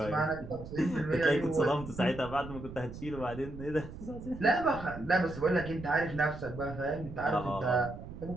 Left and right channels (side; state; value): right; noise; rumble, 12 dB below the sound